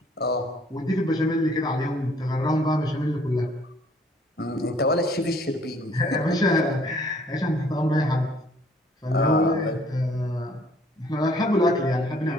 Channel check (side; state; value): both; normal; correlation 0.60